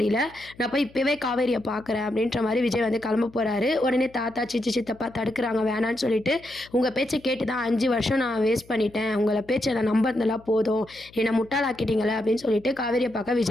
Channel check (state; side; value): noise; left; hum, 25 dB below the sound